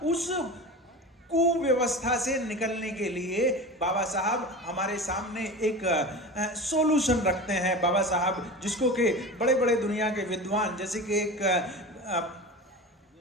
उस कुव्यवस्था से निकलने के लिए बाबा साहब हमारे सामने एक सॉल्यूशन रखते हैं। बाबा साहब जिसको कि बड़े बड़े दुनिया के विद्वान, जैसे कि एक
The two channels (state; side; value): normal; both; correlation 0.31